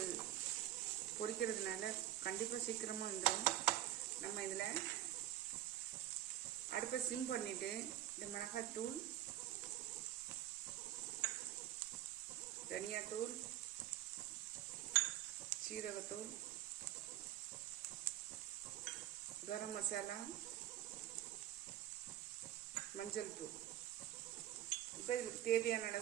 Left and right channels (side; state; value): left; quieter; 12.9 dB